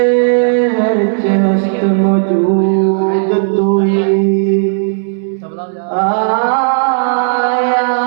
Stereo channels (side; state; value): left; silent; digital silence